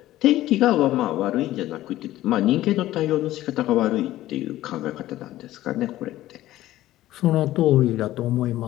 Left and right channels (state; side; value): quieter; right; 15.0 dB